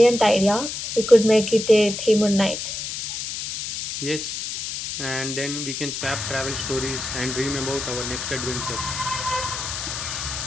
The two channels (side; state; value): left; noise; hiss, 5 dB below the sound